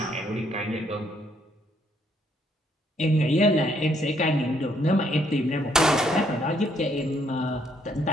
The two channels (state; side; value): normal; both; correlation 0.69